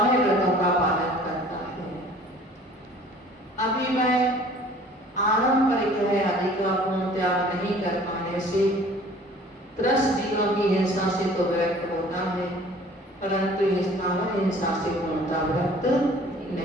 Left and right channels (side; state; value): both; normal; correlation 0.51